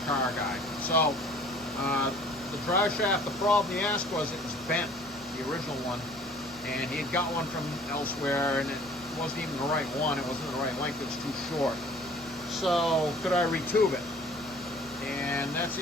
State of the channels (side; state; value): both; normal; correlation 0.52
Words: car guy. So the drive shaft, the problem he asked was it was bent, the original one, and he had got one from elsewhere, and it wasn't even the right one, it wasn't the right length, it was too short. So could I retube it? And that's